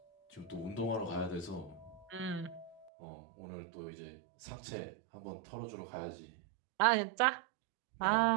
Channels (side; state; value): left; drops out; at 2.9 s